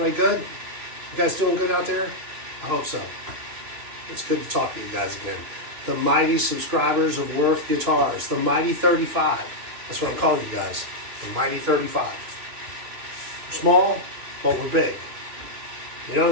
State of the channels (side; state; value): left; late; 3.2 ms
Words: good? You guys doing good out there? I hope so. It's good to talk to you guys again. The mighty subscribers of Worth Guitars, the mighty 35. That's what I'm calling you guys, the mighty 35. We're small, but we're big. You know what